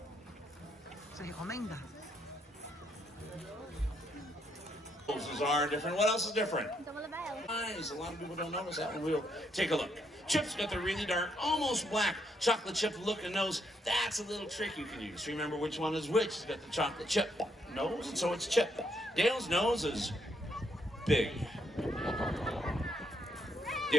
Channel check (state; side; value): normal; both; correlation 0.74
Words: Você recomenda? Noses are different. What else is different? Então vou levar ela. Eyes. A lot of people don't notice that one. We'll take a look. Chip's got the really dark, almost black chocolate chip looking nose. That's a little trick you can use. Remember which one is which. It's got the chocolate chip nose, and so it's Chip. Dale's nose is big.